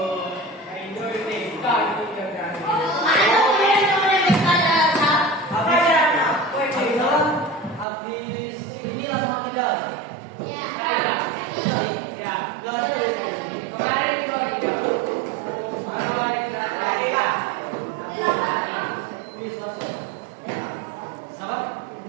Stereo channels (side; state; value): left; drops out; at 7.9 s